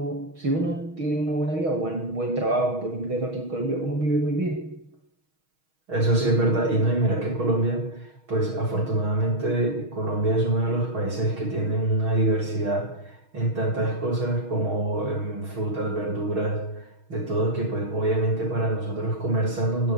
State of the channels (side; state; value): left; late; 6.3 ms